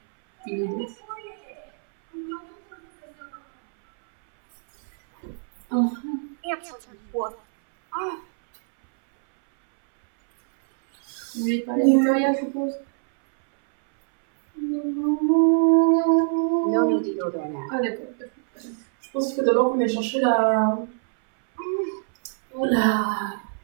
Answer what? Vous voulez parler de Victoria, je suppose? No need to go there. Ah d'accord. Je pense qu'il faut d'abord qu'on aille chercher la... Oh là...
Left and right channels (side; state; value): left; silent; 63 dB below the other